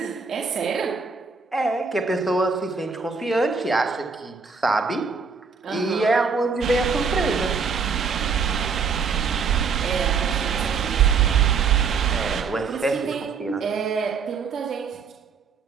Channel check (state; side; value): quieter; left; 5.3 dB